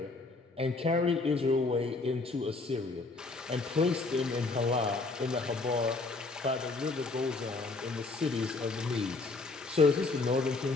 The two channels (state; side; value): quieter; right; 3.6 dB